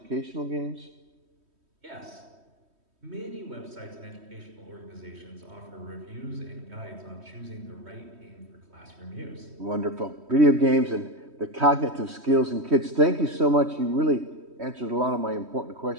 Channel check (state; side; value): late; left; 3.1 ms